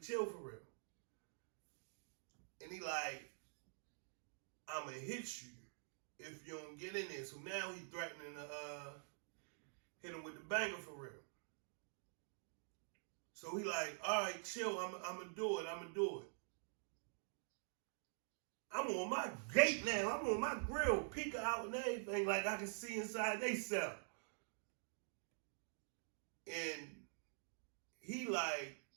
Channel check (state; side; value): silent; left; digital silence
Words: chill for real. And he like, I'ma hit you if you don't get in there. So now he threatening to hit him with the banger for real. So he like, all right, chill, I'ma do it. I'm on my gate now. I'm on my grill, peeking out and everything, like I can see inside they cell. And he like